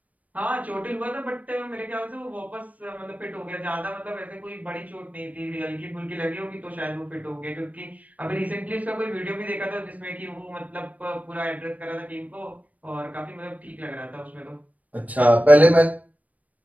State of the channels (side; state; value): left; late; 0.072 ms